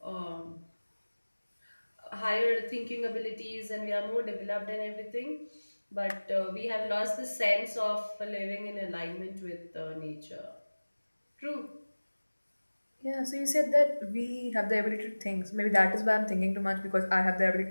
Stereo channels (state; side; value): inverted; both; correlation -1.00